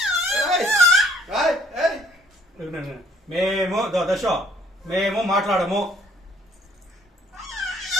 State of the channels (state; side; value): normal; both; correlation 0.63